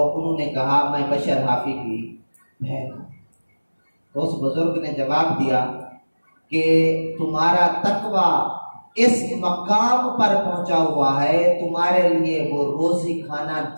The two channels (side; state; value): both; inverted; correlation -1.00